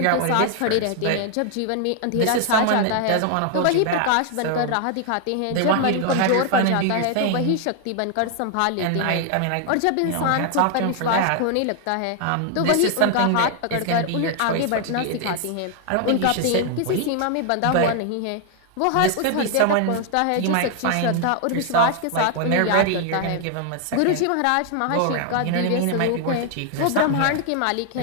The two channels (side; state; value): both; different; correlation 0.00